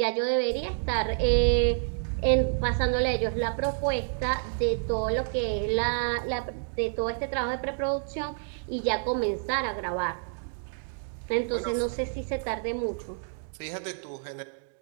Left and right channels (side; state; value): left; silent; digital silence